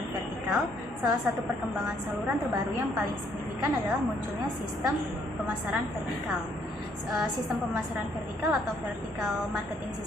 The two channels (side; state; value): both; normal; correlation 0.68